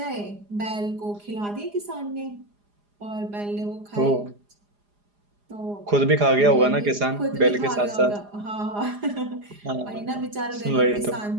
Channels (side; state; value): left; late; 4.9 ms